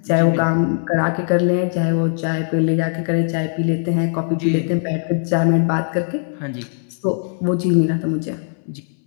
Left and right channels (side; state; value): right; silent; 66 dB below the other